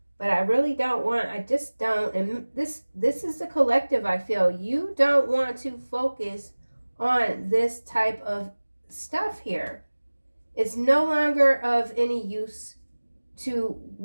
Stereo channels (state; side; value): inverted; both; correlation -1.00